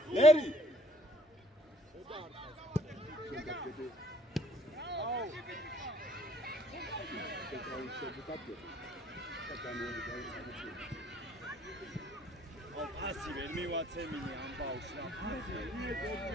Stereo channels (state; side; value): normal; both; correlation 0.60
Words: ერი ასი ვერ მივაცემინე ამ ბავშვს რა